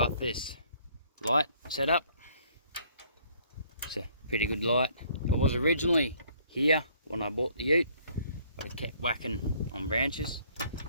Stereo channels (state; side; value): inverted; both; correlation -0.61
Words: this light set up. It's a pretty good light. It was originally here when I bought the ute, but it kept whacking on branches.